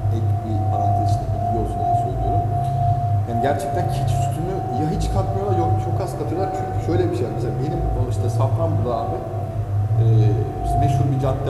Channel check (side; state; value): both; identical; correlation 1.00